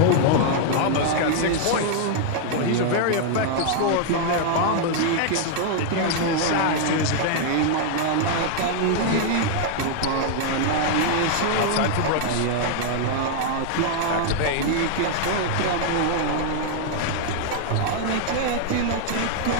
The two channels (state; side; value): different; both; correlation 0.00